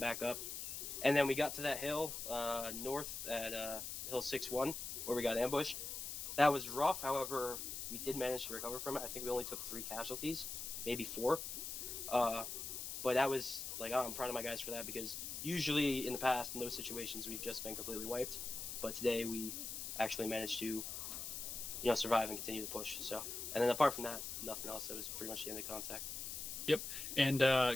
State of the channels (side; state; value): left; noise; hiss, 5 dB below the sound